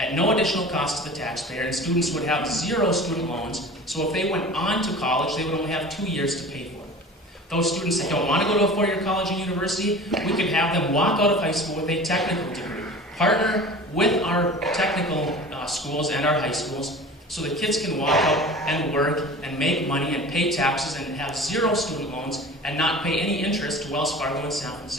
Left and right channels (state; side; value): normal; both; correlation 0.39